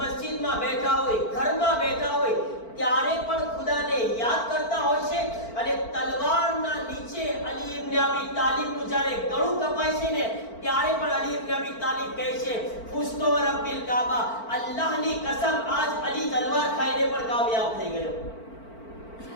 બેઠા હોય, ઘરમાં બેઠા હોય, ત્યારે પણ ખુદાને યાદ કરતા હોય છે. અને તલવારના નીચે અલી ઇબ્ન અબી તાલિબનું જ્યારે ગળું કપાય છે ને, ત્યારે પણ અલી ઇબ્ન અબી તાલિબ કહે છે, ફુસ્તો રબ્બિલ કાબા, અલ્લાહની કસમ આજ અલી તલવાર ખાઈને પણ કામયાબ થઈ ગયો.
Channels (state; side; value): late; right; 4.5 ms